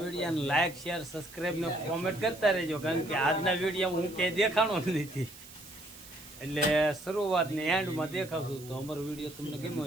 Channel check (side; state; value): right; noise; hiss, 18 dB below the sound